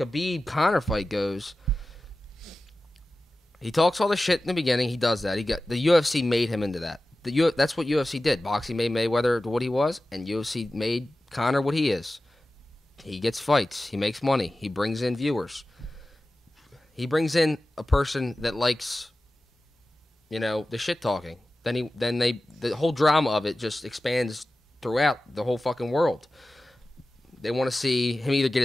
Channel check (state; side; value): normal; both; correlation 0.95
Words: fight goes, he talks all the shit in the beginning. He does that. The UFC made him into that. That's what UFC did. Boxing made Mayweather what he was, and UFC made Conor what he is. He gets fights. He makes money. He brings in viewers. He brings in a person that likes, the shit talking. Then the whole drama of it just expands throughout the whole fucking world. They want to see him either get